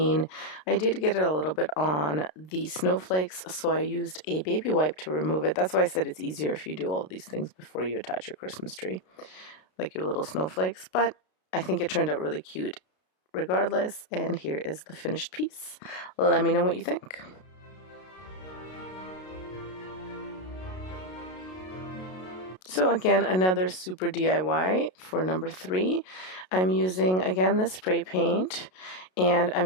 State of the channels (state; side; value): late; right; 32 ms